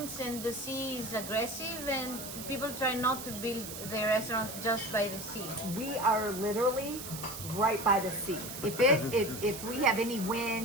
and the sea is aggressive, and people try not to build their restaurants just by the sea. we are literally right by the sea. If we have any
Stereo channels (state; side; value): noise; right; hiss, 9 dB below the sound